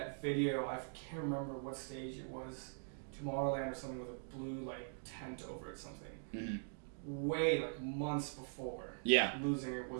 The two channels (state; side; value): silent; left; digital silence